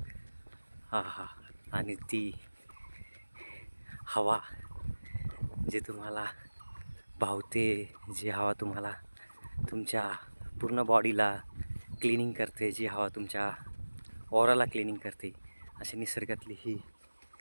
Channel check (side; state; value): both; inverted; correlation -1.00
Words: हा हा, आणि ती हवा जी तुम्हाला भावते, जी हवा तुम्हाला तुमच्या पूर्ण बॉडीला क्लिनिंग करते, जी हवा तुमच्या ऑराला क्लिनिंग करते. अशी निसर्गातली ही